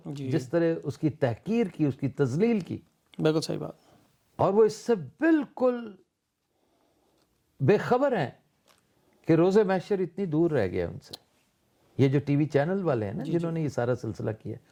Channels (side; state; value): both; identical; correlation 1.00